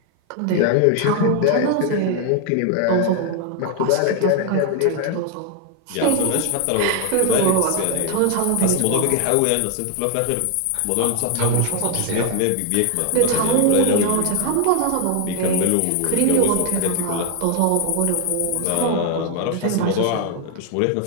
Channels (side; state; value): both; different; correlation 0.00